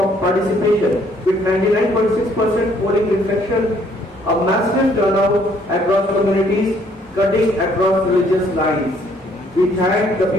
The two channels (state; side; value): normal; both; correlation 0.64